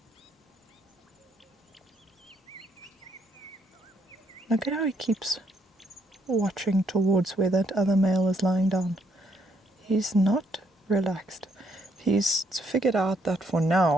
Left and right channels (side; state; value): both; normal; correlation 0.72